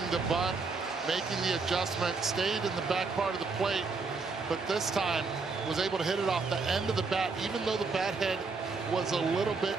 the bunt, making the adjustment, stayed in the back part of the plate, but this time was able to hit it off the end of the bat, even though the bat head was a little bit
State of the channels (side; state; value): left; quieter; 4.3 dB